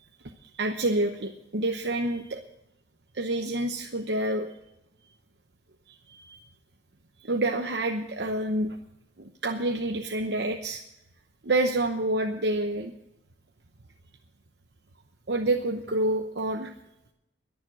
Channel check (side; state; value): both; normal; correlation -0.02